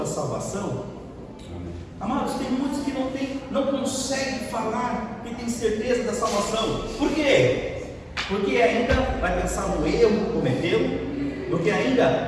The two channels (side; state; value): both; identical; correlation 1.00